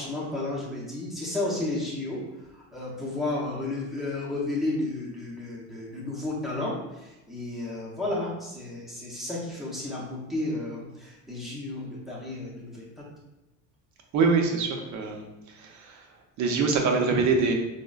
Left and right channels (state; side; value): normal; both; correlation 0.25